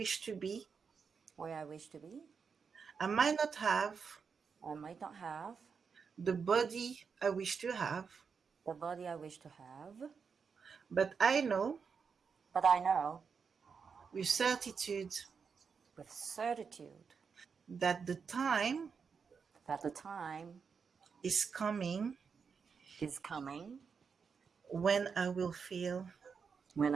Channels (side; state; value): left; quieter; 5.9 dB